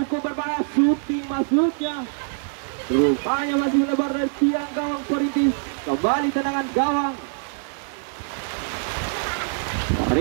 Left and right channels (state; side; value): silent; left; 63 dB below the other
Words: berbahaya, shooting masuknya. Rupanya masih melebar dari tiang gawang Perintis. Kembali tendangan gawang